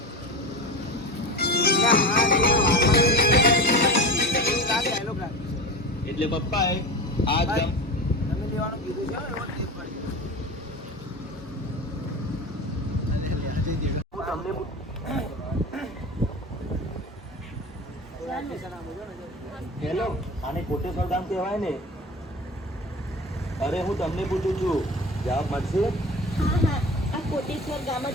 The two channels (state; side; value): normal; both; correlation 0.29